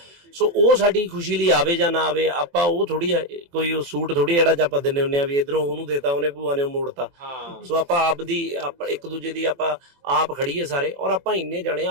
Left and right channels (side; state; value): left; late; 23 ms